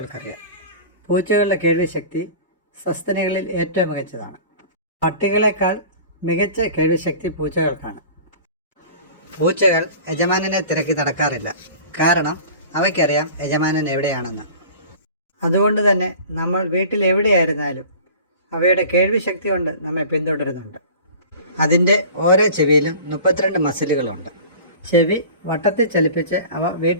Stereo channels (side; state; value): both; inverted; correlation -0.41